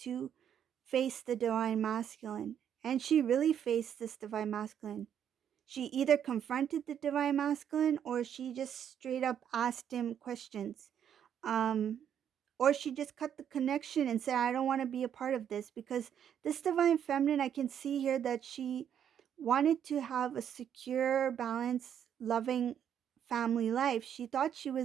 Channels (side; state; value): left; quieter; 9.1 dB